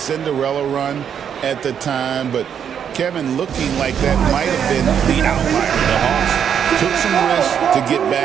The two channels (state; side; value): quieter; left; 8.2 dB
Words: run at the time, but Kevin, looking like that might have been the outlier. The Hawks took some risks to get